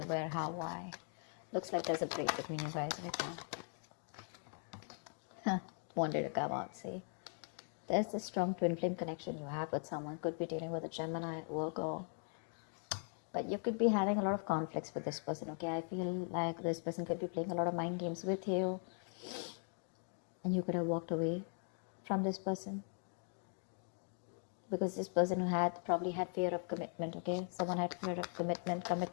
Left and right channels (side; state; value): right; silent; 51 dB below the other